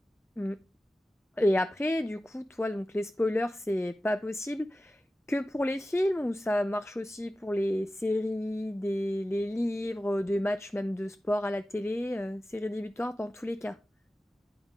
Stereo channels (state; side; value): normal; both; correlation 0.95